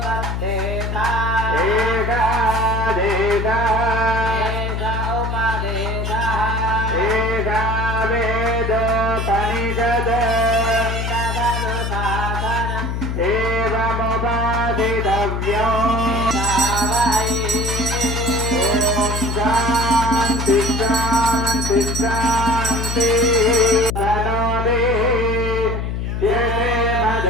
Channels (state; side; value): noise; left; hum, 2 dB below the sound